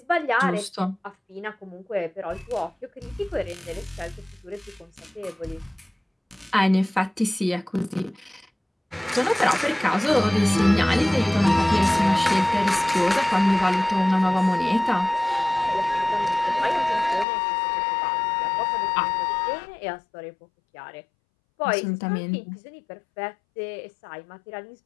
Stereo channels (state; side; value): drops out; right; at 17.2 s